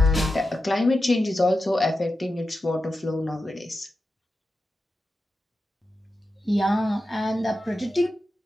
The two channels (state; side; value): normal; both; correlation 0.90